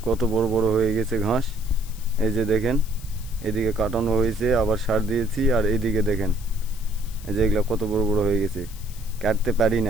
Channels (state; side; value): noise; left; hiss, 19 dB below the sound